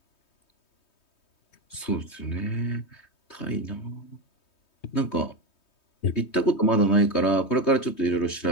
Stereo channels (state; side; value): late; right; 3.2 ms